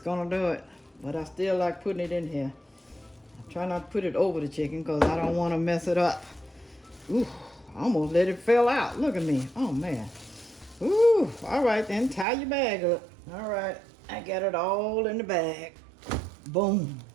to do it. But I still like putting it in here. I try not to put it over the chicken because I don't want to mess it up. Ooh, I almost let it fall out. Look at me. Oh, man. Ooh, all right then. Tie your bag up. All right. I got it all in the bag. Boom.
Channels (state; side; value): drops out; left; at 12.2 s